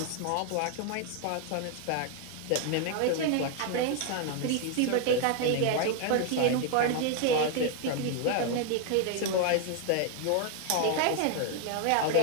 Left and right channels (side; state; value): both; different; correlation 0.00